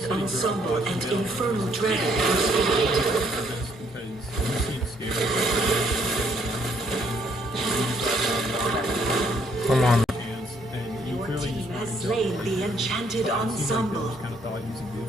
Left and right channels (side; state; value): both; normal; correlation 0.67